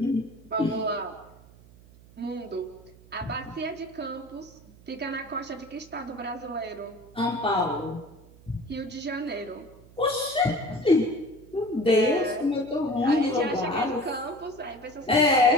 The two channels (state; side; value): noise; right; hum, 23 dB below the sound